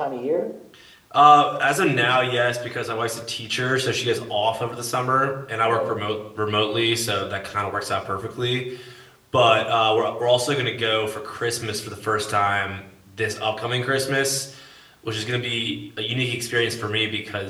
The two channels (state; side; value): identical; both; correlation 1.00